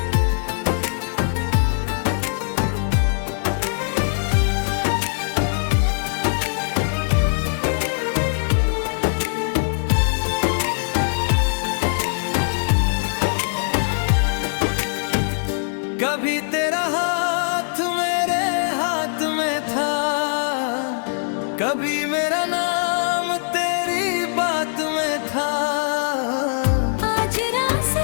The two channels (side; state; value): right; silent; 63 dB below the other